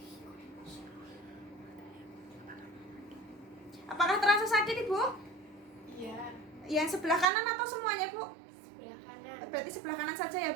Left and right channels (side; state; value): left; drops out; at 7.2 s